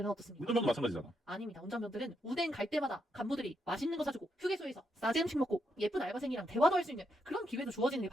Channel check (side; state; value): both; normal; correlation 0.80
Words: 어떻습니까? 운전병도 마찬가지잖아. 아닙니다. 운전병들은 운행 갈 때마다 간부들이 맛있는 거 사주고 휴게소에서 싸지 음식 먹고 예쁜 알바생이랑 대화도 할 수 있는 그런 기회도 주어지는 게